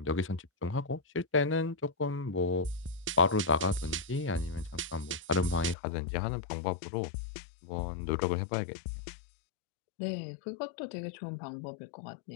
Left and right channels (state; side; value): drops out; right; at 5.8 s